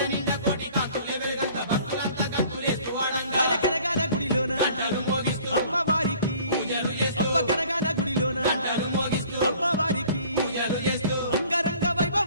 కనగాన గుడిలోన అమ్మవారికి అమ్మ కనగాన గుడిలోన అమ్మవారికి అంగరంగ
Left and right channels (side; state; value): both; inverted; correlation -0.52